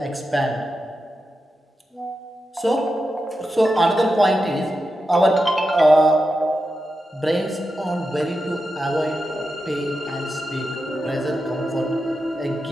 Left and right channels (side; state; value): both; normal; correlation 0.89